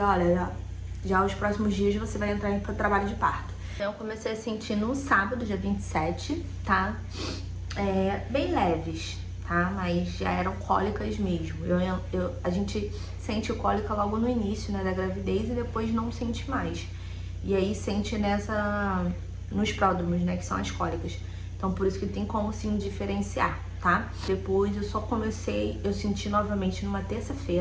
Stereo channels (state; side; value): identical; both; correlation 1.00